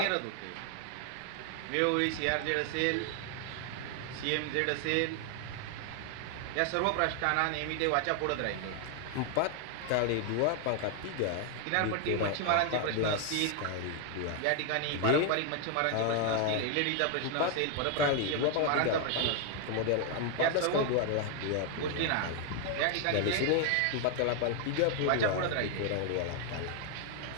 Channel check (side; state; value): both; different; correlation 0.00